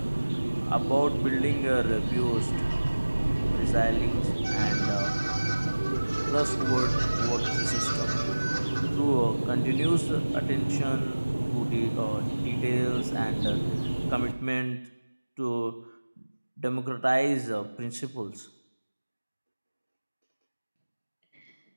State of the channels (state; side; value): inverted; both; correlation -1.00